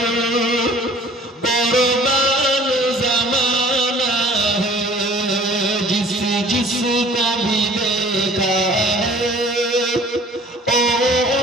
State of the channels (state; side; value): normal; both; correlation 0.50